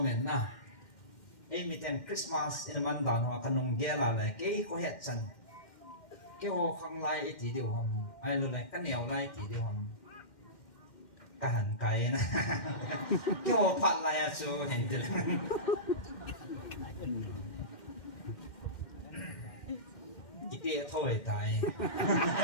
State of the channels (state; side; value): late; right; 2.1 ms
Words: men na e mi ten Christmas in man dan ho kanong gela le ke ko het chan ke ho khang lai e ti dio ham ai lo le ka neo lai ti dio ham ka han kai na ke ho phat lai a chu hen de ki te thoi tai